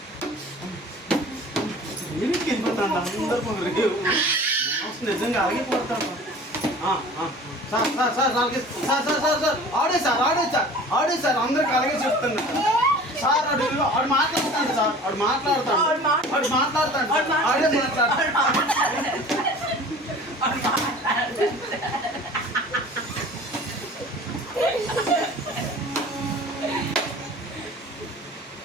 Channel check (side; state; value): both; normal; correlation 0.43